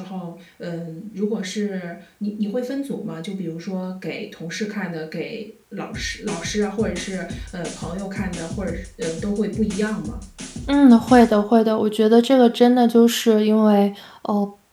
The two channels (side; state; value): both; identical; correlation 1.00